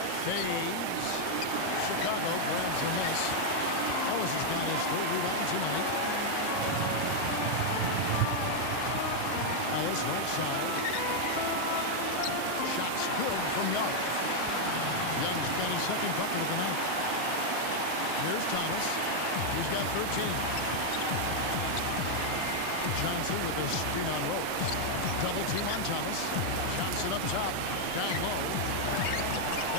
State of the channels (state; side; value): different; both; correlation 0.00